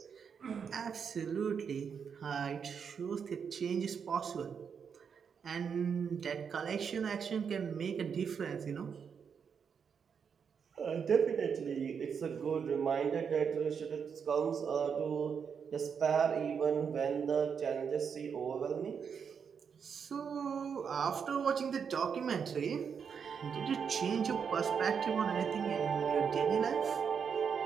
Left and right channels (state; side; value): quieter; left; 6.7 dB